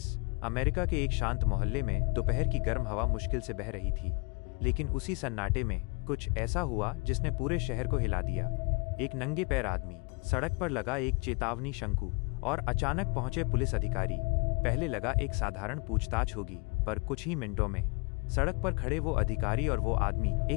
America के एक शांत मोहल्ले में दोपहर की गर्म हवा मुश्किल से बह रही थी, लेकिन उसी सन्नाटे में कुछ ऐसा हुआ जिसने पूरे शहर को हिला दिया। एक नंगे पैर आदमी, सड़क पर लगा एक चेतावनी शंकु और अचानक पहुंचे पुलिस अधिकारी। पहले लगा एक साधारण पूछताछ होगी, पर कुछ ही मिनटों में सड़क पर खड़े वो अधिकारी और वो आदमी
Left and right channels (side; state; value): right; quieter; 30.8 dB